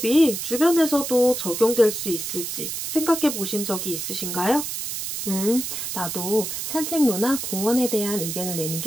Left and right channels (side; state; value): right; noise; hiss, 5 dB below the sound